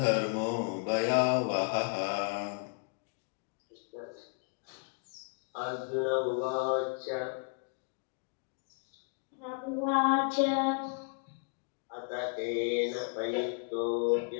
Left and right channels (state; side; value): quieter; right; 38.7 dB